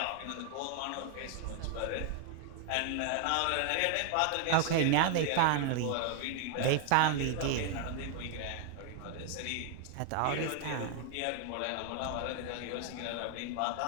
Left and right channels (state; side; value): different; both; correlation 0.00